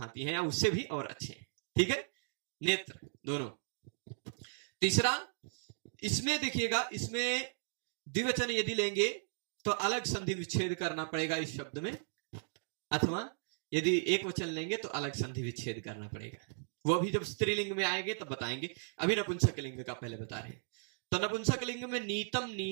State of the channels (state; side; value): silent; left; digital silence